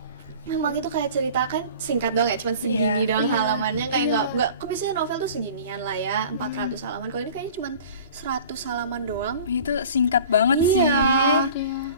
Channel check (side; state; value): both; inverted; correlation -0.44